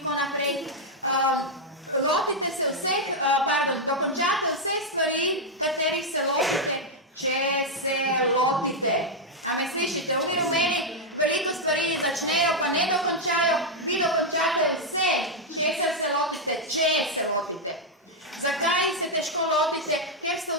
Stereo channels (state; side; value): normal; both; correlation -0.02